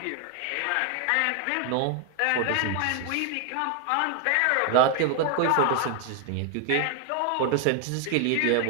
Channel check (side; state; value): both; different; correlation 0.00